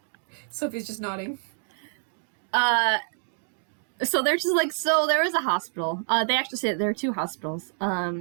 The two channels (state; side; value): silent; left; 58 dB below the other